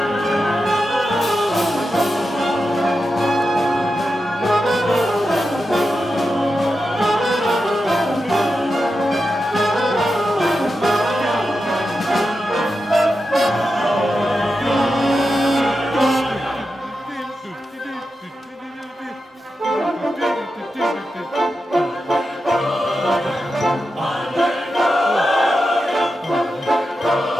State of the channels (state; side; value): normal; both; correlation 0.89